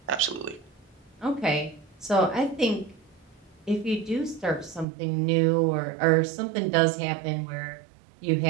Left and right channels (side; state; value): left; drops out; at 4.9 s